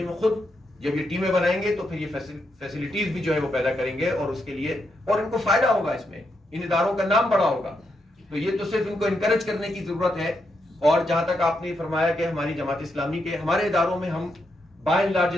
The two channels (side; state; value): both; normal; correlation 0.82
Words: میں خود جب یہ ٹیمیں بنائیں گے تو پھر یہ فیسلٹیز بھی جو ہے وہ پیدا کریں گے, اور اس کے لیے اور ان کو فائدہ ہوگا, اس میں ان اداروں کا نام بڑا ہوگا. تو یہ تو صرف ان کو انکریج کرنے کی ضرورت ہے. اور جہاں تک آپ نے فرمایا کہ ہماری جماعت اسلامی کے ہمارے اداروں میں ہم بائی اینڈ لارج